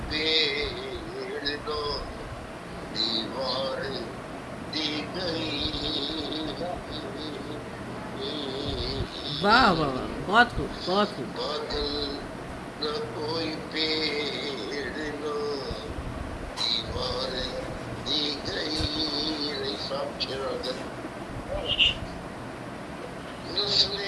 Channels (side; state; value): both; identical; correlation 1.00